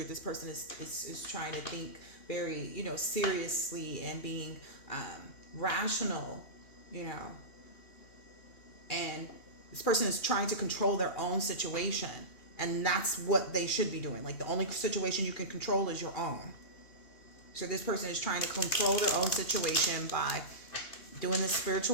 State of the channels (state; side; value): late; right; 2.8 ms